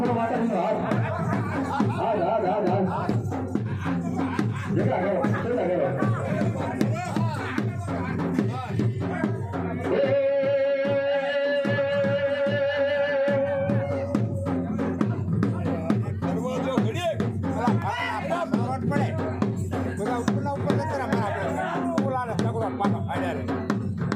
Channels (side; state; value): both; identical; correlation 1.00